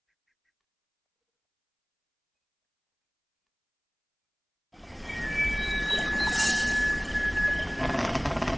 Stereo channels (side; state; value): both; identical; correlation 1.00